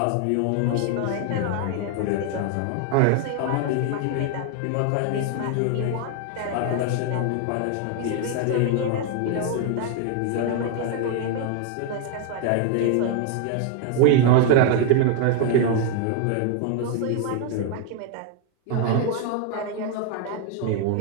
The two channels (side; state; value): both; different; correlation 0.00